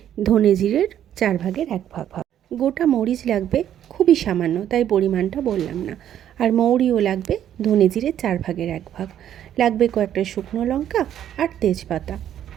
ধনে জিরের 1/4 ভাগ। গোটা মরিচ লাগবে খুবই সামান্য, তাই পরিমাণটা বললাম না। আর মৌরিও লাগবে ধনে জিরে 1/4 ভাগ। লাগবে কয়েকটা শুকনো লঙ্কা আর তেজপাতা।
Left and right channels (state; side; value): quieter; left; 10.6 dB